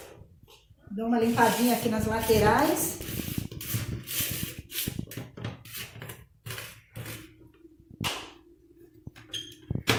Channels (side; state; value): both; identical; correlation 1.00